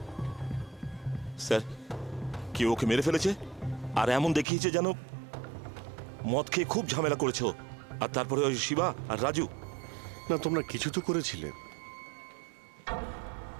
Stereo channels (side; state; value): left; drops out; at 4.5 s